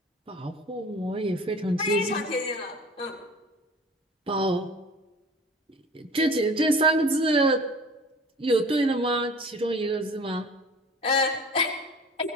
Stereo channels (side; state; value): both; normal; correlation 0.42